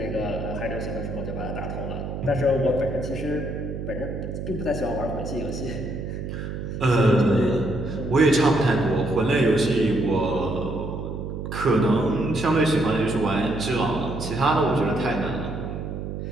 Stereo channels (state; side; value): noise; right; hum, 6 dB below the sound